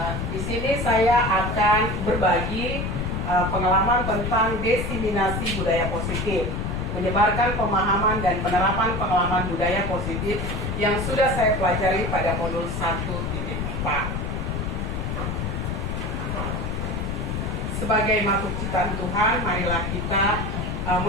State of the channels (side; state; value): left; noise; rumble, 3 dB below the sound